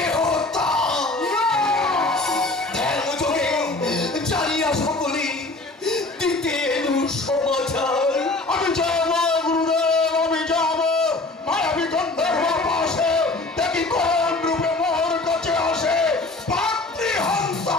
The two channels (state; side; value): quieter; right; 3.1 dB